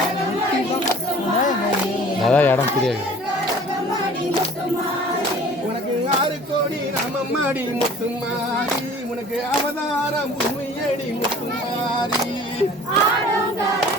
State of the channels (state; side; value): normal; both; correlation 0.48